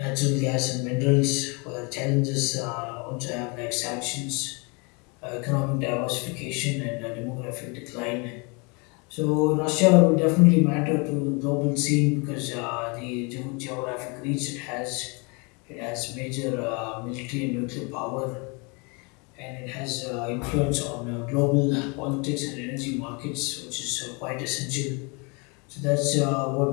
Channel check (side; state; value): right; quieter; 31.3 dB